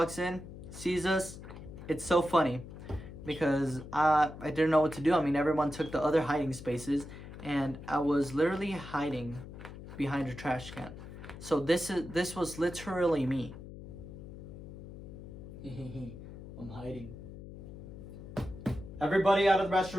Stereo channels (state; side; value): noise; left; hum, 13 dB below the sound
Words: in, sees us. It's so funny because I didn't know what to do. I mean, everyone took the other hiding spaces, and I was literally hiding behind a trash can. So this was literally me. I'm hiding. Everybody out of the